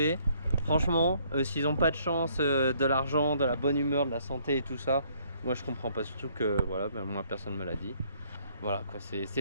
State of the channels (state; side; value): inverted; both; correlation -0.65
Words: Franchement, s'ils n'ont pas de chance, de l'argent, de la bonne humeur, de la santé et tout ça, moi je comprends pas. Surtout que voilà, ben, moi personne me l'a dit. Voilà quoi,